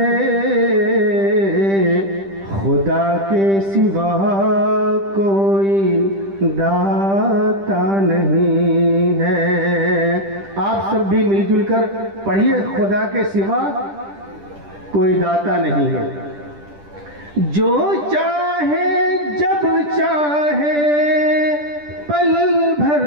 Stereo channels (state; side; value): late; left; 10 ms